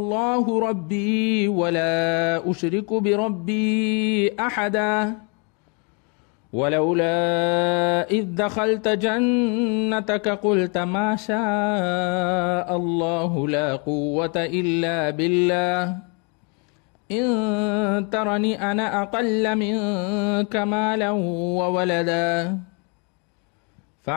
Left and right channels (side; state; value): right; quieter; 35.1 dB